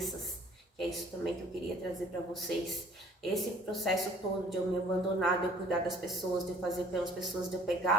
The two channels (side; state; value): both; normal; correlation 0.53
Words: que é isso também que eu queria trazer para vocês. Esse processo todo de eu me abandonar, de eu cuidar das pessoas, de eu fazer pelas pessoas, de eu